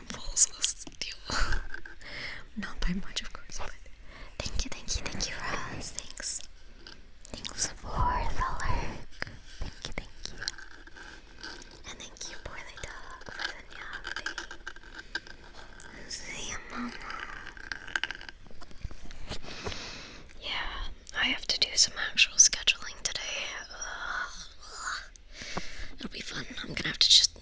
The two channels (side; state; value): both; identical; correlation 1.00